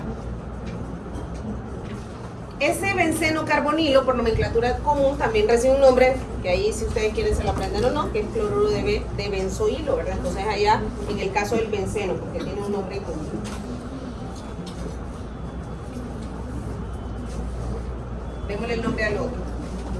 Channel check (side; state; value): both; identical; correlation 1.00